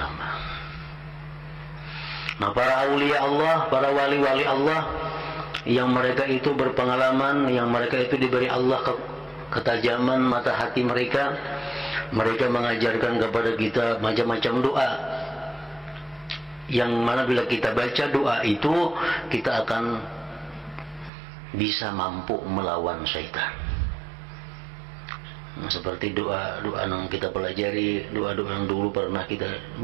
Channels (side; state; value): left; drops out; at 21.1 s